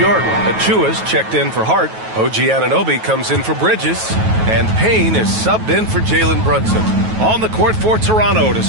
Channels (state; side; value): late; left; 9.2 ms